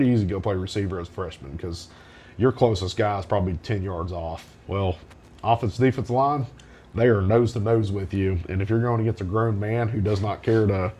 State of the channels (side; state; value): both; identical; correlation 1.00